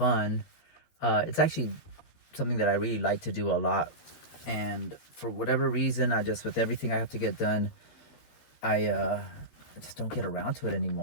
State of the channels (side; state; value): right; late; 12 ms